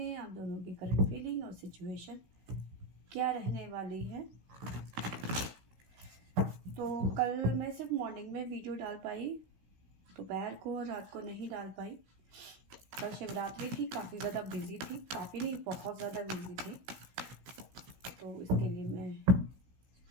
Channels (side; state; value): left; late; 16 ms